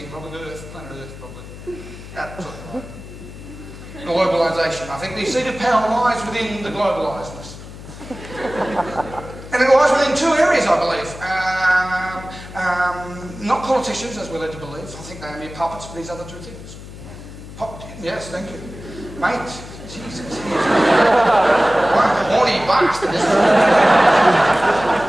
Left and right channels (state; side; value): noise; left; hum, 14 dB below the sound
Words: probably Earth, planet Earth, probably. That sort of thing. Globalisation. I think the seat of power lies within the globalisedness. And it lies within two areas, I believe. Not politicians, as we're led to believe. I think they are mere puppets for these other two things. Yes, thank you. Mate, Jesus. What a horny bastard, isn't